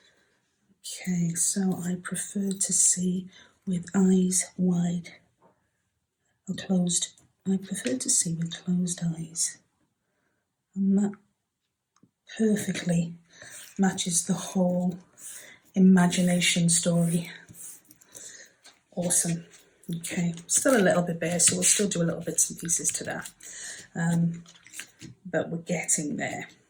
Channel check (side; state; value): both; identical; correlation 1.00